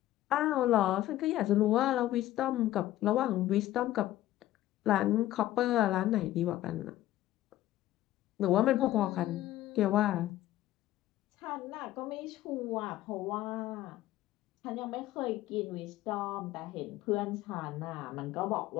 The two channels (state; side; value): quieter; right; 14.6 dB